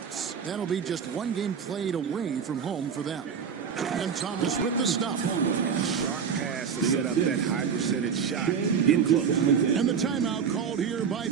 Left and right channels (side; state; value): left; quieter; 6.9 dB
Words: That'll be just 1 game played away from home for them. And Thomas with the stop. Sharp pass to set up that high percentage shot in close. And the timeout called here by